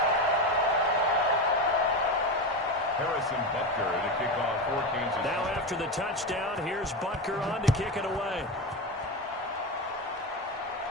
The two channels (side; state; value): both; normal; correlation 0.18